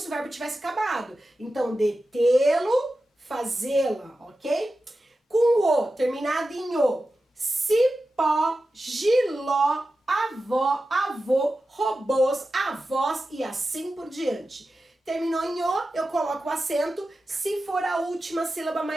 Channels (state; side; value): normal; both; correlation 0.93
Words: o verbo tivesse acabado. Então, detê-lo, fazê-la, ok? Com o, terminado em o. Cipó, giló, avó, avô, robôs, avós e assim por diante. Terminou em o, eu coloco o acento se for a última sílaba